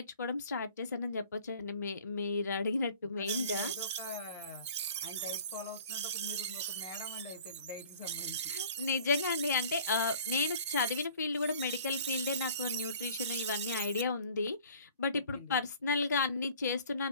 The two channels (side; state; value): both; inverted; correlation -0.49